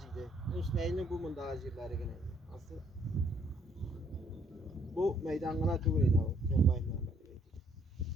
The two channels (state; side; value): normal; both; correlation 0.66